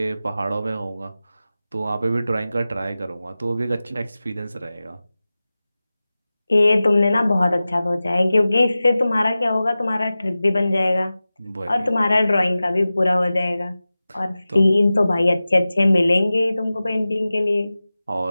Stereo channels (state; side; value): inverted; both; correlation -0.96